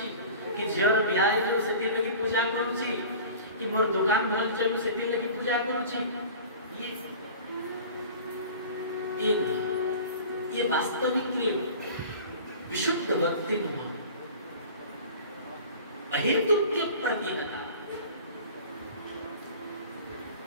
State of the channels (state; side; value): inverted; both; correlation -0.40